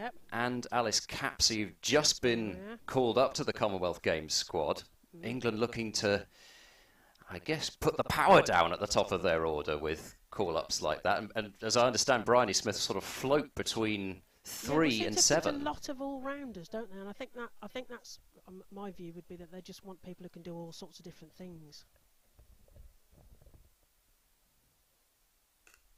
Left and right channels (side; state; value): both; identical; correlation 1.00